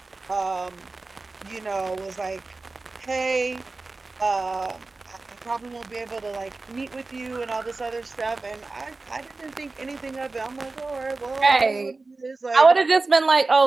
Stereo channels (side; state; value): left; quieter; 3.5 dB